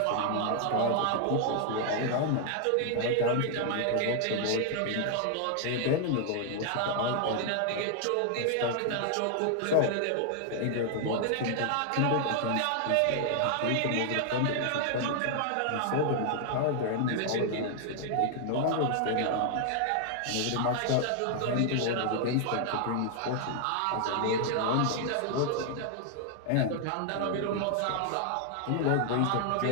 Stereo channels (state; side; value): different; both; correlation 0.00